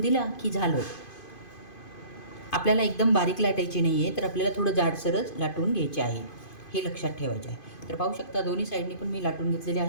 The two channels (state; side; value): late; right; 2.5 ms